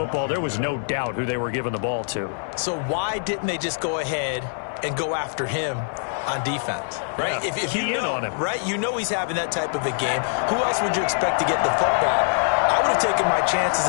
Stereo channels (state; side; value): silent; right; digital silence